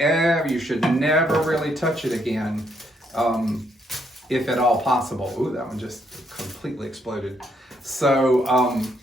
should never really touch it again, if at all possible. Ooh, that one just completely exploded. So I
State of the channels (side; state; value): both; normal; correlation 0.74